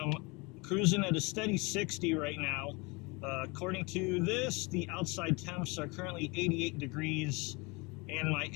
cruising at a steady 60 right now. According to this, the outside temps are currently 88 degrees, and my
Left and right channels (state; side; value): quieter; right; 27.4 dB